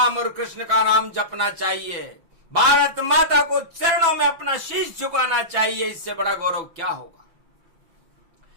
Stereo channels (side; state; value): left; late; 6.0 ms